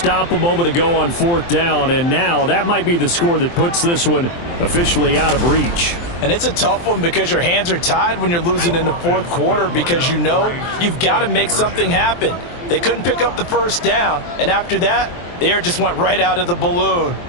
a moment ago on 4th down, and now that might be the score that puts this one officially out of reach. And it's a tough one because your hands are tied when you're losing in the 4th quarter because you know you've got to make something happen. They couldn't pick up the first down, and after that, the air just went right out of the balloon,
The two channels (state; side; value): late; right; 23 ms